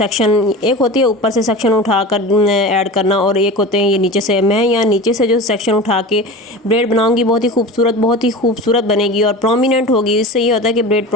एक होती है ऊपर से सेक्शन उठा कर ऐड करना, और एक होते हैं ये नीचे से। मैं यहाँ नीचे से जो सेक्शन उठा के ब्रेड बनाऊंगी, बहुत ही खूबसूरत बनेगी और प्रोमिनेंट होगी। इससे ये होता है कि ब्रेड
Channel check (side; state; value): both; normal; correlation 0.32